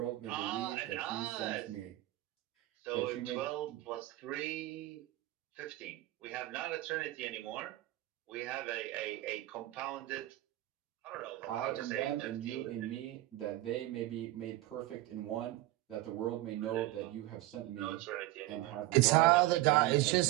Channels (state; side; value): quieter; left; 16.9 dB